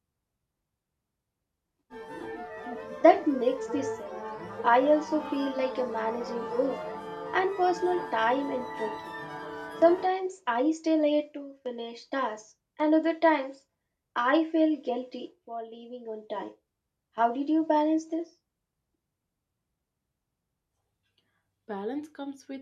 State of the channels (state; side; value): identical; both; correlation 1.00